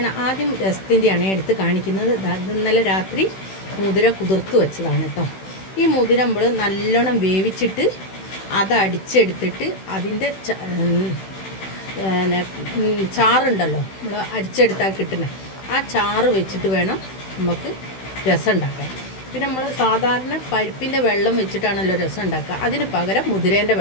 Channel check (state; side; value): late; right; 16 ms